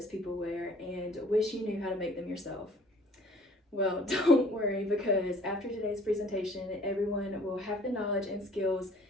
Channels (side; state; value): both; normal; correlation 0.53